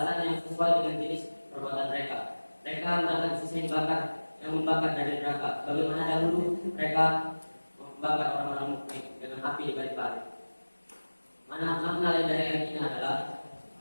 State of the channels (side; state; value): both; inverted; correlation -1.00